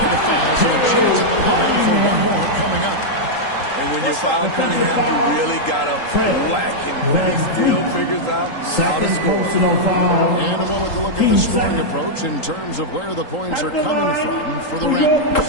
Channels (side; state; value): right; late; 3.8 ms